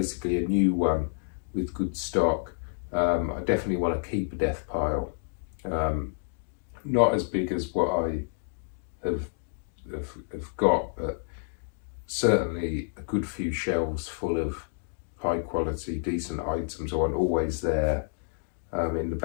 a new one with good stock. I definitely want to keep a death pile, not as big as what I have got, but certainly a good few shelves full of high quality, decent items I want always there in the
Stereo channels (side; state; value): right; silent; digital silence